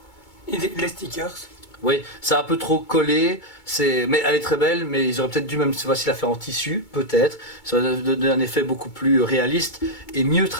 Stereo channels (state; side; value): late; right; 2.2 ms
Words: Et les stickers. Oui, c'est un peu trop collé, mais elle est très belle, mais ils auraient peut-être dû même cette fois-ci la faire en tissu, peut-être. Ça aurait donné un effet beaucoup plus réaliste et mieux